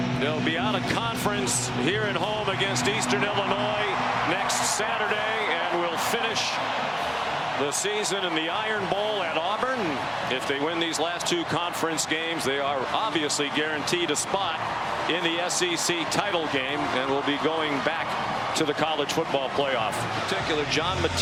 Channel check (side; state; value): both; identical; correlation 1.00